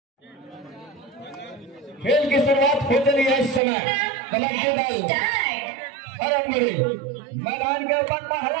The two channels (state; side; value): drops out; left; at 3.6 s